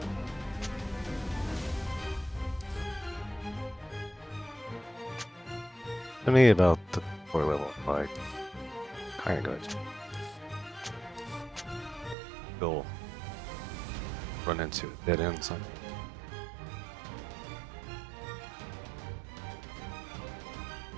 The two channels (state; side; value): drops out; left; at 12.2 s